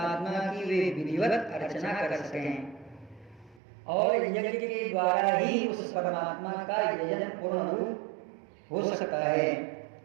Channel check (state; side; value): drops out; left; at 3.6 s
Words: की वे विधिवत अर्चना कर सकें और यज्ञ के द्वारा ही उस परमात्मा का यजन पूर्ण रूप हो सकता है